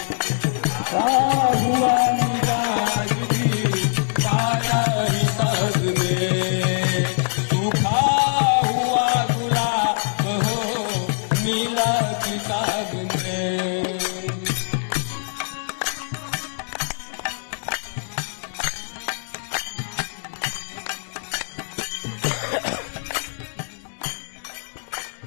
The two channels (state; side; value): silent; right; digital silence